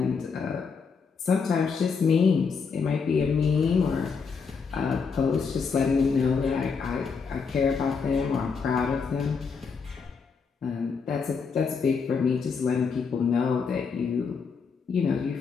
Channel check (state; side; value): quieter; right; 5.5 dB